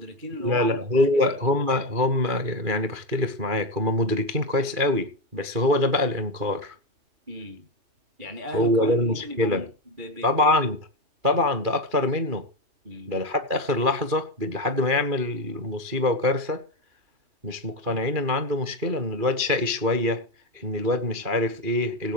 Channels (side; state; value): left; late; 2.4 ms